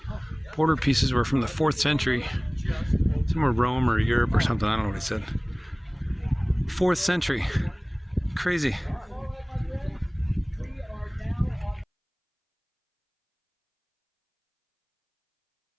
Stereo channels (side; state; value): both; identical; correlation 1.00